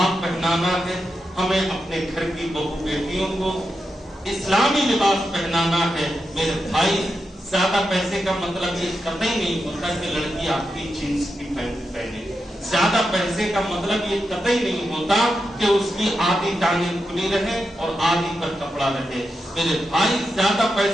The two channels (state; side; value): normal; both; correlation 0.87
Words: پہنانا ہے، ہمیں اپنے گھر کی بہو بیٹیوں کو اسلامی لباس پہنانا ہے. میرے بھائی، زیادہ پیسے کا مطلب یہ قطعی نہیں ہوتا کہ لڑکی آپ کی جینس کی پینٹ پہنے. زیادہ پیسے کا مطلب یہ قطعی نہیں ہوتا کہ اس کی آدھی ٹانگیں کھلی رہے اور آدھی پر کپڑا رہے. میرے بھائی، زیادہ